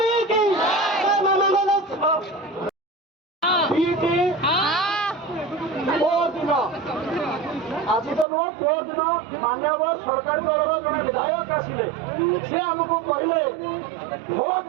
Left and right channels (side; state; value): left; drops out; at 8.2 s